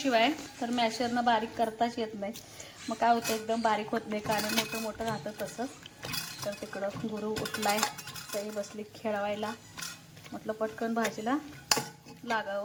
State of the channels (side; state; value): both; identical; correlation 1.00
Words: तर मॅशरनं बारीक करताच येत नाही मग काय होतं एकदम बारीक होत नाही कारण मोठं मोठं राहतं तसं तर तिकडं गुरु उठलाय तरी बसली खेळवायला म्हटलं पटकन भाजीला